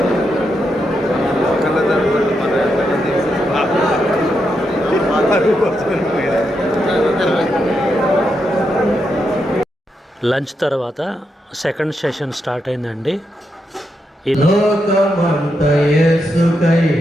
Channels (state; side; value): normal; both; correlation 0.83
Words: లంచ్ తర్వాత సెకండ్ సెషన్ స్టార్ట్ అయిందండి. లోకమంత యేసుకై